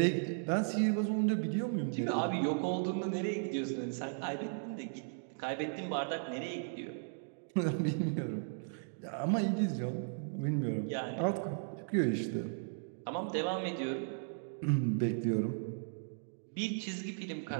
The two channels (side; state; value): left; silent; digital silence